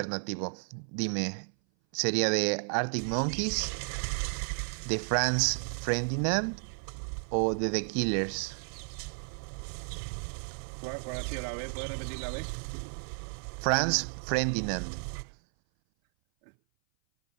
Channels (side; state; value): left; silent; 56 dB below the other